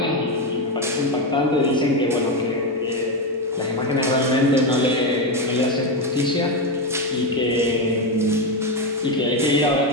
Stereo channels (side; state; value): both; normal; correlation 0.10